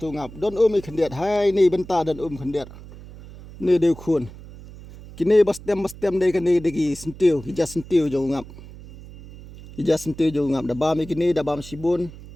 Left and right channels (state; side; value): noise; right; hum, 17 dB below the sound